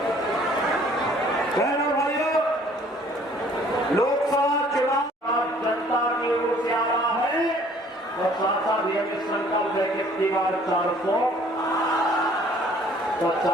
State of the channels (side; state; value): both; normal; correlation 0.56